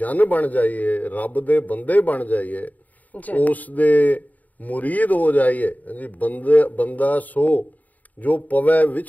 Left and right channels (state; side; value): late; right; 0.076 ms